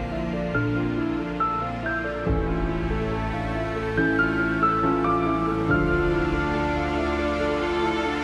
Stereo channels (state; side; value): identical; both; correlation 1.00